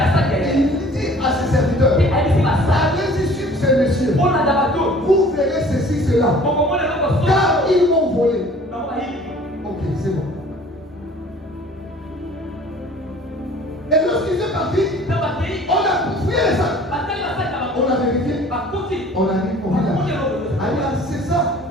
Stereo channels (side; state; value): both; normal; correlation 0.50